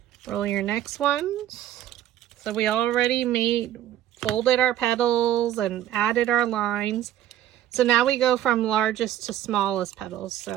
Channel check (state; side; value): quieter; left; 12.1 dB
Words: Roll your next one. So we already folded our petals and added our lines. So now we go from largest to smallest petals.